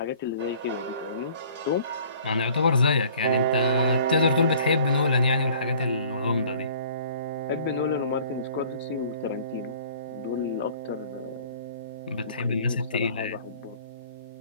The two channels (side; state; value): both; inverted; correlation -0.51